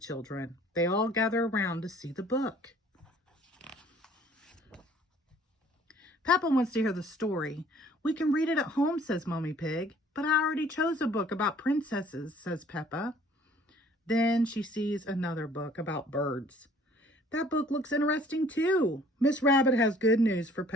They all gather around to see the book. Peppa wants to hear the story. We can read it at home, says Mommy Pig. But I already chose a book about princesses, says Peppa. Then she sees another book about birds. That book looks interesting too. Miss Rabbit has good news for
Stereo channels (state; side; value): normal; both; correlation 0.55